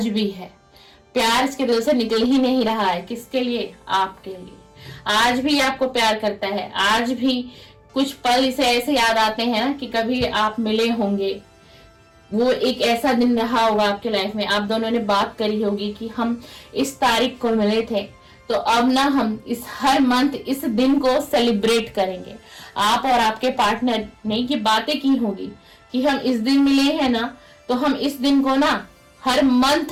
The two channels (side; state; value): both; identical; correlation 1.00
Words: भी है। प्यार इसके दिल से निकल ही नहीं रहा है। किसके लिए? आपके लिए। आज भी आपको प्यार करता है, आज भी कुछ पल इसे ऐसे याद आते हैं ना कि कभी आप मिले होंगे, वो एक ऐसा दिन रहा होगा आपके लाइफ में, आप दोनों ने बात करी होगी कि हम इस तारीख को मिले थे, तो अब ना हम इस हर मंथ इस दिन को सेलिब्रेट करेंगे। आप और आपके पार्टनर ने ये बातें की होगी कि हम इस दिन मिले हैं ना, तो हम इस दिन को ना हर